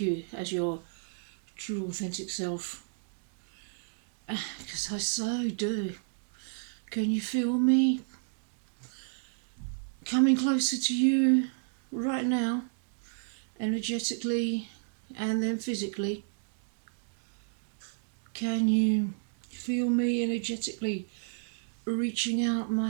you as your true authentic self. Because I so do. Can you feel me coming closer to you right now? Energetically and then physically. Can you feel me energetically reaching out my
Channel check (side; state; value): left; silent; digital silence